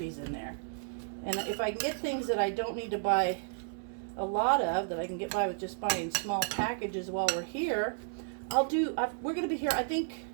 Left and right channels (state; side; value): silent; left; digital silence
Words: in there. And if I can get things that I don't need to buy a lot of, that I can get by with just buying small packages while we're here, we're gonna be here, I think,